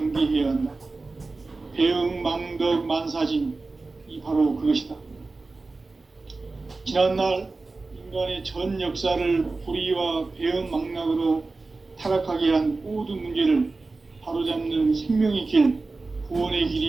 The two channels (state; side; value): quieter; left; 3.6 dB